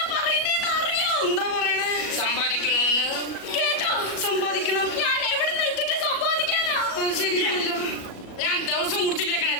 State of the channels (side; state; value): right; late; 37 ms